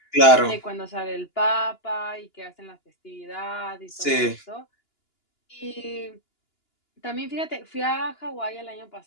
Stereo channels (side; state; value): right; late; 2.9 ms